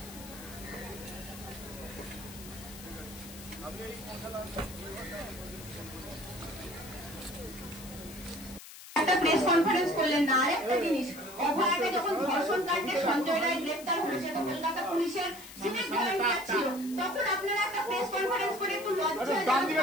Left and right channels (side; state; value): left; noise; hiss, 15 dB below the sound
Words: একটা প্রেস কনফারেন্স করলেন না। আরেকটা জিনিস, অভয়াকে যখন ধর্ষণ কাণ্ডে সঞ্জয় রায় গ্রেপ্তার হয়েছে, কলকাতা পুলিশের সিভিক ভলেন্টিয়ার ছিল, তখন আপনারা একটা প্রেস কনফারেন্স করে একটু লজ্জা